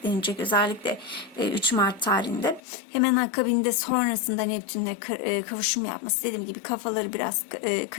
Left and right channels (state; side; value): drops out; right; at 2.6 s